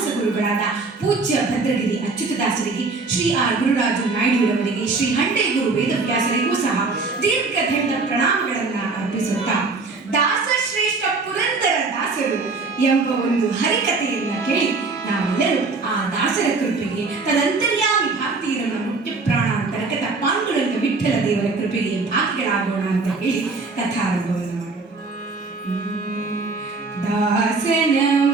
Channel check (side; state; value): left; quieter; 3.9 dB